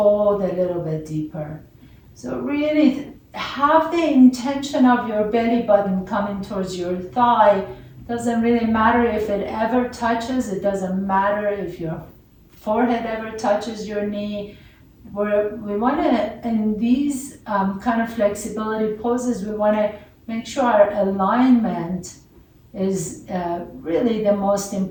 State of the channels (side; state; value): both; identical; correlation 1.00